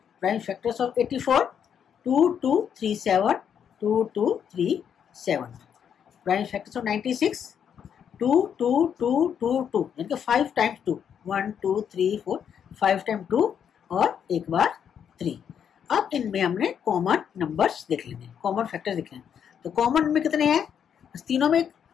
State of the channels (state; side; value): quieter; right; 8.2 dB